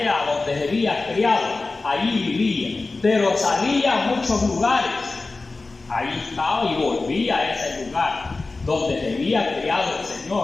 donde se había criado. Allí vivía, pero salía a muchos lugares. Ahí estaba y volvía a ese lugar donde se había criado el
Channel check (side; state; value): right; quieter; 3.6 dB